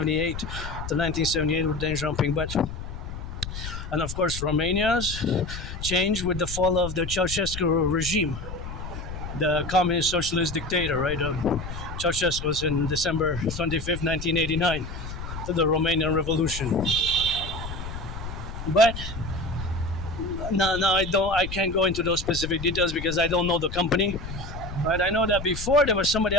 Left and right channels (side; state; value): left; noise; rumble, 8 dB below the sound